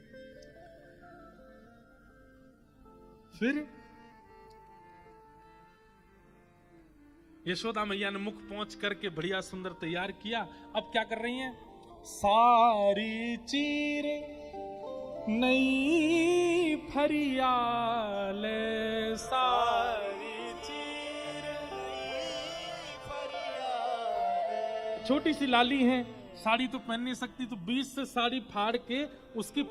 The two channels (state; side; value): identical; both; correlation 1.00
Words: फिर यशोदा मैया ने मुख पहुंच करके बढ़िया सुंदर तैयार किया। अब क्या कर रही हैं? सारी चीर नई फरियाल, सारी चीर नई फरियाल। छोटी सी लाली है, साड़ी तो पहन नहीं सकती, तो बीच से साड़ी फाड़ के उसकी